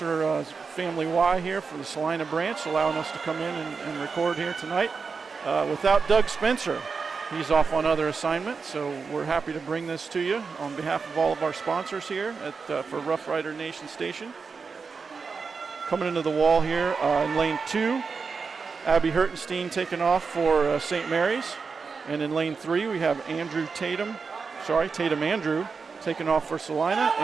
Family Y here for the Celina branch, allowing us to come in and record here tonight. Without Doug Spencer, he's off on other assignments, so we're happy to bring this to you on behalf of all of our sponsors here for Rough Rider Nation Station. Coming into the wall here in lane 2, Abby Hertenstein taking off for St. Mary's. And in lane 3, we have Tatum Andrew taking off for Celina.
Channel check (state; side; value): quieter; left; 5.1 dB